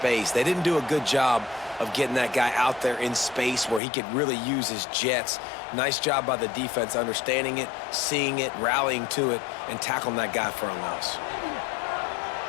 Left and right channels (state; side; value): drops out; right; at 3.8 s